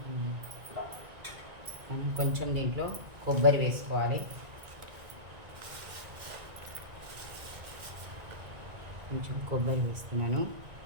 మనం కొంచెం దీంట్లో కొబ్బరి వేసుకోవాలి. కొంచెం కొబ్బరి వేస్తున్నాను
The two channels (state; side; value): late; left; 1.9 ms